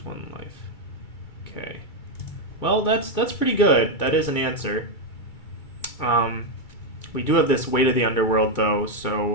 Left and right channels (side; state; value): right; late; 2.3 ms